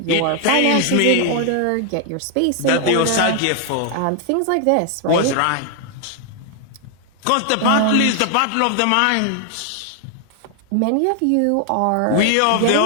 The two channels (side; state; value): both; different; correlation 0.00